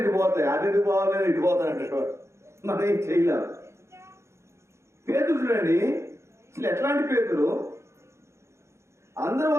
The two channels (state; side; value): late; left; 0.13 ms